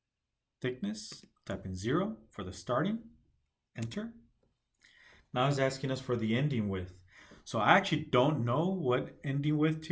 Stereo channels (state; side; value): identical; both; correlation 1.00